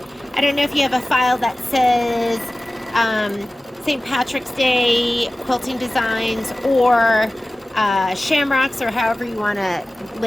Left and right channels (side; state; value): both; normal; correlation 0.97